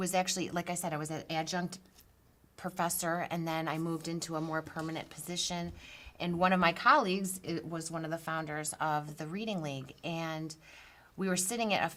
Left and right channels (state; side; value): identical; both; correlation 1.00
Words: actually, like I said, I was an adjunct professor, and then I moved into a more permanent position. And one of my colleagues was one of the founders of the Reading League, and we were sitting at a